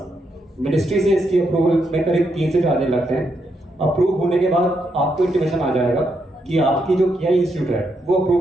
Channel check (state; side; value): normal; both; correlation 0.80